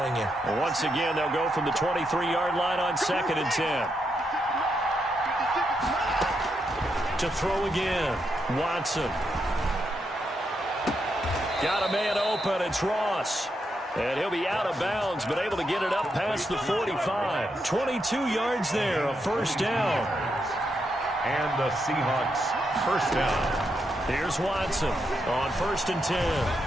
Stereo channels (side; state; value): both; normal; correlation 0.82